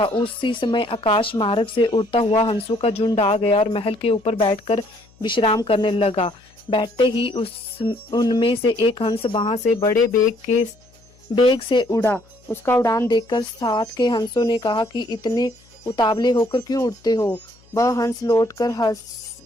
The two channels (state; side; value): noise; left; hum, 29 dB below the sound